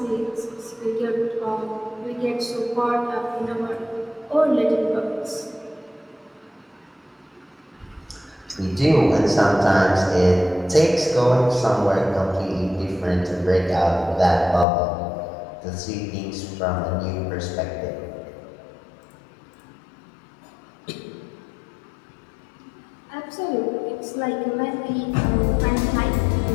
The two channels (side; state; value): right; drops out; at 14.7 s